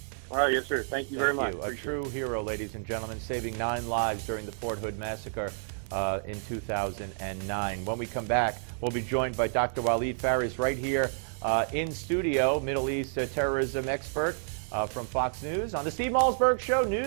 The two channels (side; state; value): left; silent; digital silence